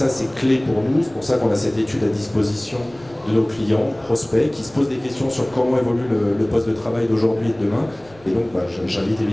c'est clé pour nous. C'est pour ça qu'on a cette étude à disposition de nos clients, prospects, qui se posent des questions sur comment évolue le poste de travail d'aujourd'hui et de demain. Et donc, j'invite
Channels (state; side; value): noise; left; rumble, 26 dB below the sound